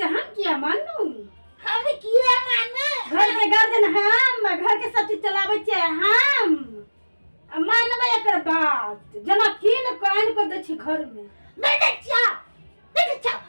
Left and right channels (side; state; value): both; inverted; correlation -1.00